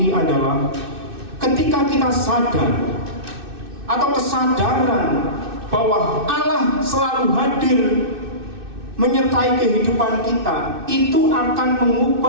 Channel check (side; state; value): left; late; 2.6 ms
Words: adalah ketika kita sadar atau kesadaran bahwa Allah selalu hadir menyertai kehidupan kita, itu akan